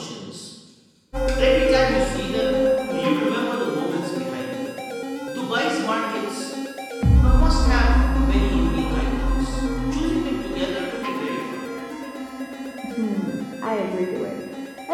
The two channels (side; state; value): both; identical; correlation 1.00